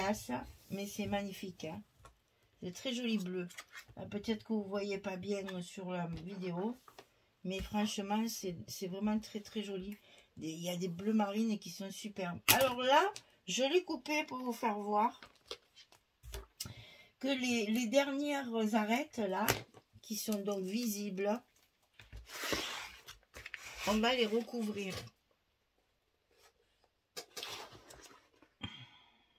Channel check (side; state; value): both; identical; correlation 1.00